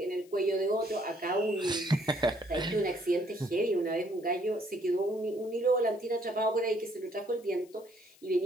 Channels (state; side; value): noise; left; hiss, 27 dB below the sound